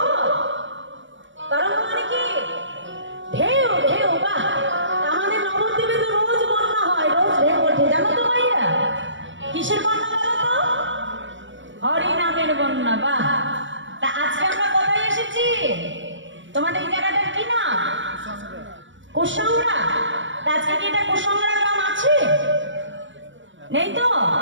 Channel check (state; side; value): late; left; 0.55 ms